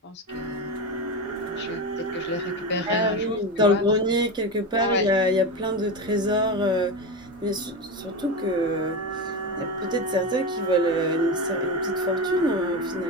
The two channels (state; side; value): normal; both; correlation 0.19